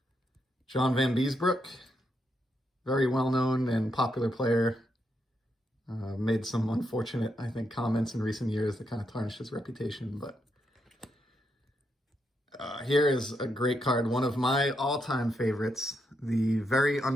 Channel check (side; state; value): both; normal; correlation 0.81